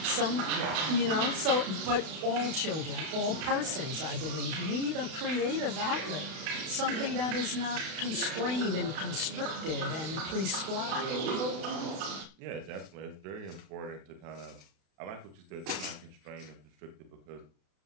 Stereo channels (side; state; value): left; late; 32 ms